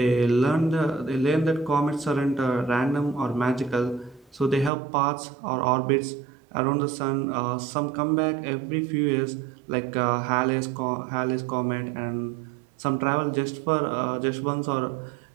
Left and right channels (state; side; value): drops out; left; at 4.7 s